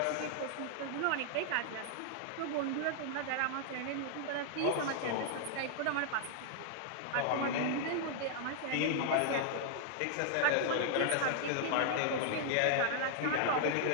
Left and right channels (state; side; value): different; both; correlation -0.01